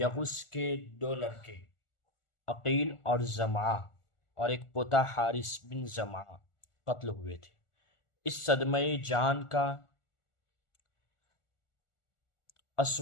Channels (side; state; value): right; late; 1.4 ms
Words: کے 2 لڑکے عقیل اور زمعہ اور ایک پوتا حارث بن زمعہ قتل ہوئے تھے۔ اس صدمہ جان کا